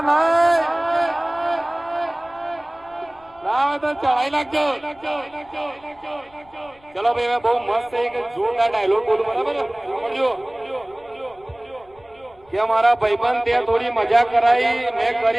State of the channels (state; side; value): noise; left; rumble, 29 dB below the sound